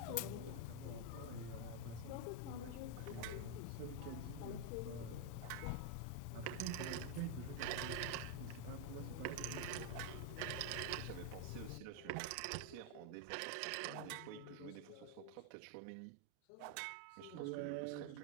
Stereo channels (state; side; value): different; both; correlation 0.01